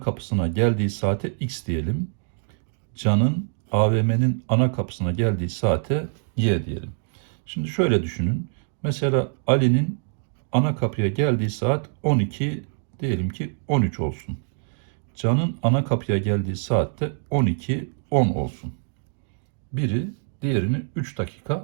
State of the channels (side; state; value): left; silent; digital silence